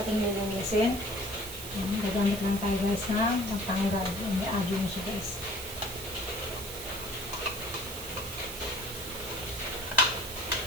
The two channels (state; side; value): noise; right; hiss, 9 dB below the sound